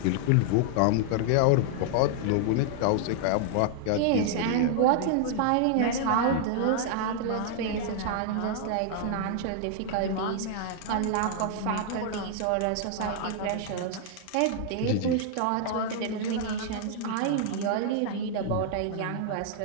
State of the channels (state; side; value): different; both; correlation -0.01